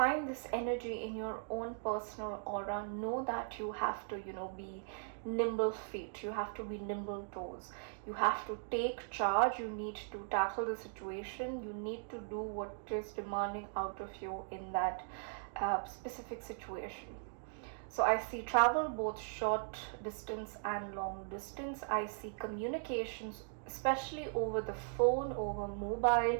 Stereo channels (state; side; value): silent; left; digital silence